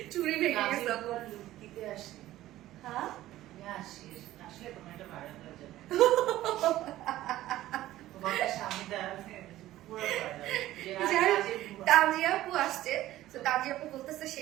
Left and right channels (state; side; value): quieter; left; 14.9 dB